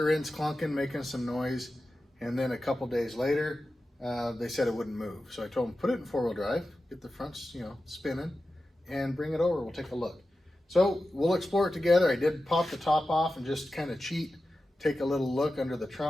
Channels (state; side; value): normal; both; correlation 0.93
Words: end's clunking, making some noise. And then a couple days later, they said it wouldn't move. So I told him, put it in four-wheel drive, get the fronts, spinning, and bring it over. We'll take a look. So we'll explore it together. I did pop the top off and just kind of cheat, take a little look under the